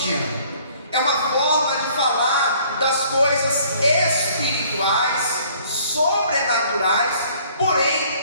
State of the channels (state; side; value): inverted; both; correlation -0.58